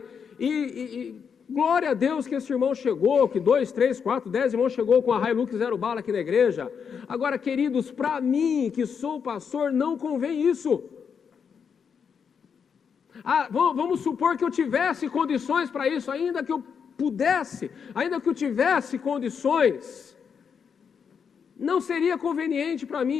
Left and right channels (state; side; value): quieter; right; 6.7 dB